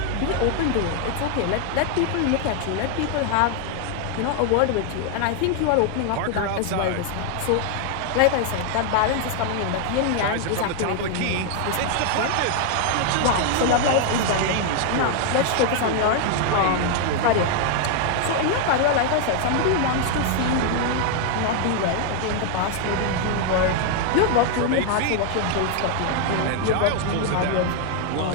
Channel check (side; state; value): both; different; correlation 0.00